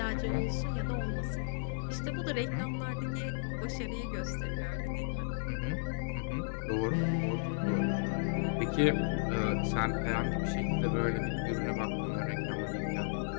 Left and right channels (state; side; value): silent; right; 55 dB below the other